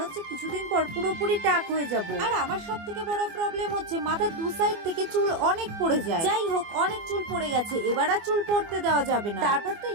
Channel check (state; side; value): late; left; 24 ms